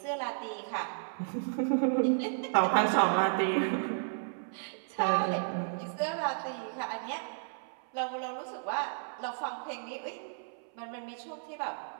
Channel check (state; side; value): silent; left; 56 dB below the other